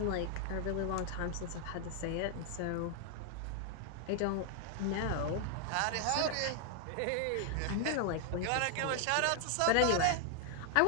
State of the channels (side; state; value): both; different; correlation 0.00